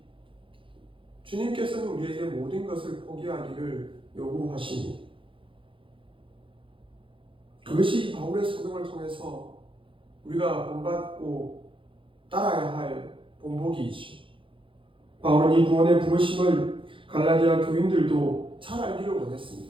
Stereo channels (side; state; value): left; late; 0.25 ms